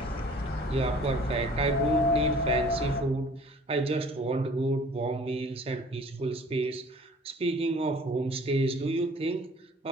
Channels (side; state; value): both; normal; correlation 0.50